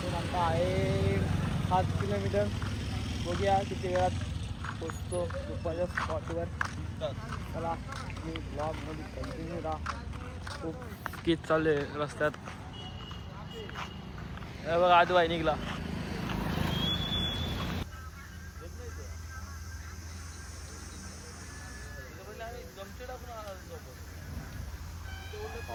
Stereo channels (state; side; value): identical; both; correlation 1.00